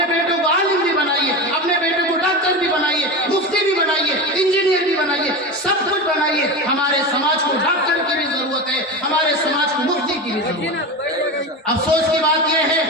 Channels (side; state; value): both; normal; correlation 0.23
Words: بیٹے کو عالم بھی بنائیے, اپنے بیٹے کو ڈاکٹر بھی بنائیے, مفتی بھی بنائیے, انجینئر بھی بنائیے, سب کچھ بنائیے. ہمارے سماج کو ڈاکٹر کی بھی ضرورت ہے, ہمارے سماج کو مفتی کی بھی ضرورت ہے. افسوس کی بات یہ